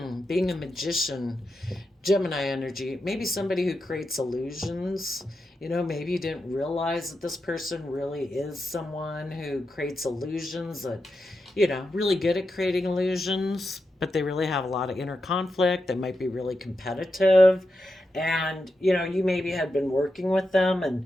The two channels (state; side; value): normal; both; correlation 0.88